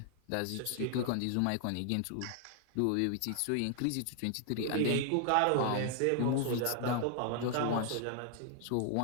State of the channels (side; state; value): both; different; correlation 0.00